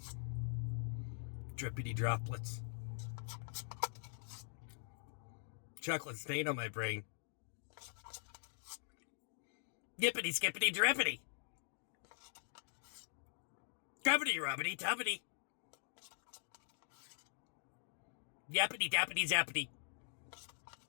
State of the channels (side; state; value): right; silent; digital silence